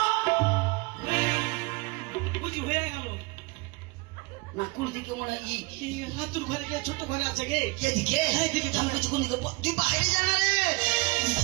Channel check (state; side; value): quieter; left; 25.5 dB